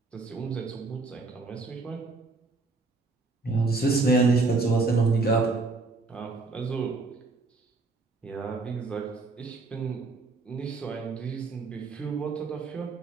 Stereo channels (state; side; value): quieter; left; 3.7 dB